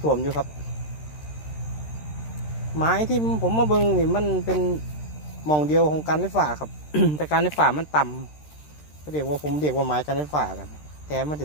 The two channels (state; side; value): late; right; 13 ms